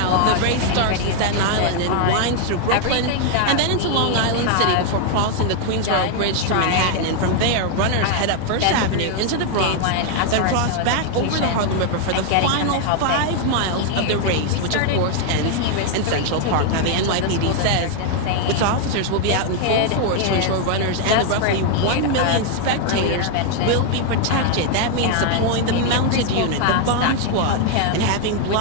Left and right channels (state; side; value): different; both; correlation 0.00